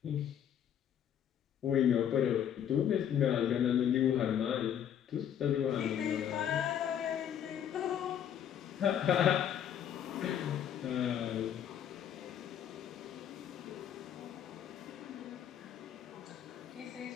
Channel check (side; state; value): right; quieter; 9.4 dB